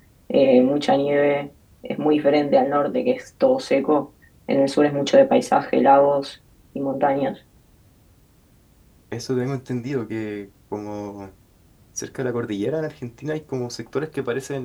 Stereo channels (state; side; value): identical; both; correlation 1.00